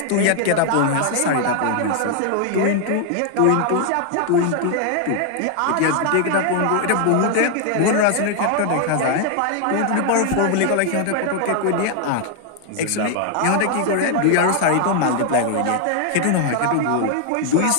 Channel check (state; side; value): different; both; correlation 0.00